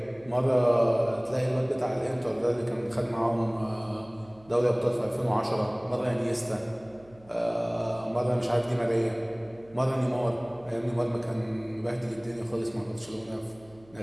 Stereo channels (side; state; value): right; noise; hum, 26 dB below the sound